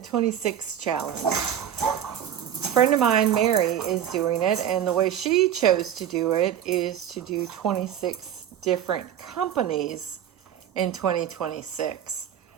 26 challenge. A friend of mine, Mary, is doing it, and the way she chose to do it is to do 26 different companies in 2026.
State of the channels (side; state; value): left; quieter; 9.9 dB